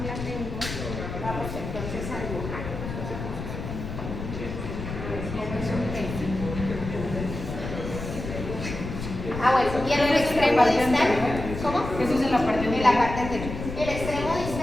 la tengo, vamos entonces a dibujar. Bueno, y en el extremo distal, ¿cómo? Eso es en la parte anterior. En la parte anterior. El extremo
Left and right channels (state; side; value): noise; left; rumble, 7 dB below the sound